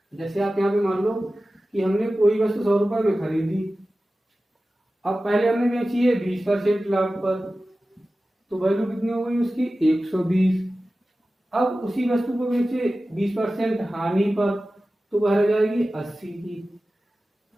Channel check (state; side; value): normal; both; correlation 0.95